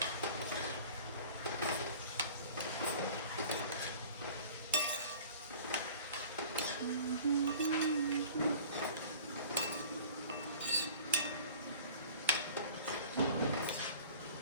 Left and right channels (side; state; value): both; inverted; correlation -0.45